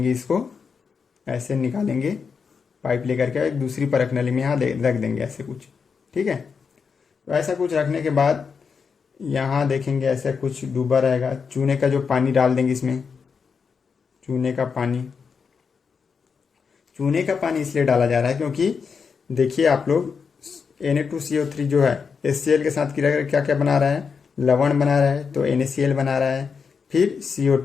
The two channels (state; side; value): quieter; right; 5.8 dB